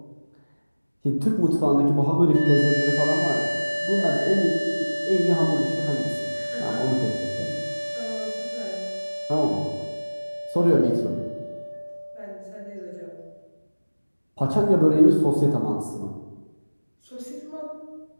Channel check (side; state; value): both; inverted; correlation -1.00